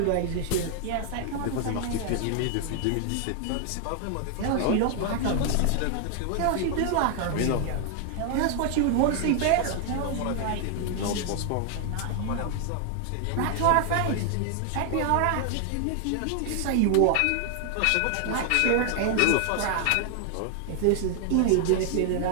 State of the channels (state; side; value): different; both; correlation 0.00